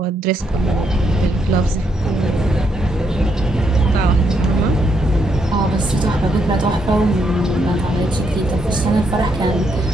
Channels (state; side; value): normal; both; correlation 0.77